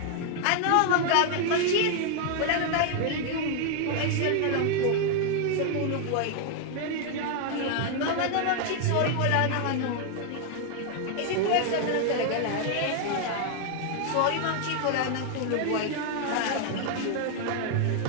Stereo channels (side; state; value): both; different; correlation 0.00